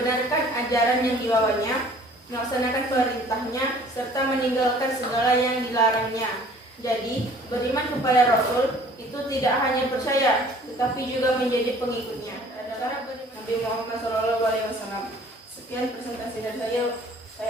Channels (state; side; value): normal; both; correlation 0.53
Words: ajaran yang dibawanya, melaksanakan perintahnya, serta meninggalkan segala yang dilarangnya. Jadi, beriman kepada Rasul itu tidak hanya percaya, tetapi juga menjadi pengikutnya. Adalah Nabi Muhammad SAW. Sekian presentasi dari